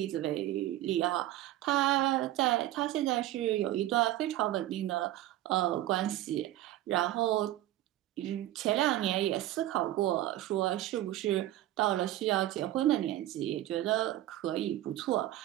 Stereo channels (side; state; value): left; quieter; 14.6 dB